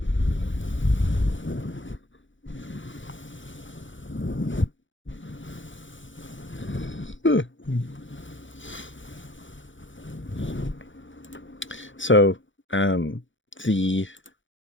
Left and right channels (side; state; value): right; late; 0.56 ms